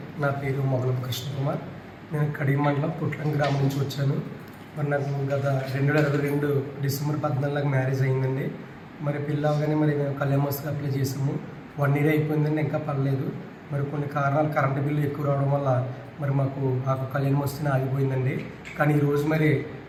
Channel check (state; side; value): identical; both; correlation 1.00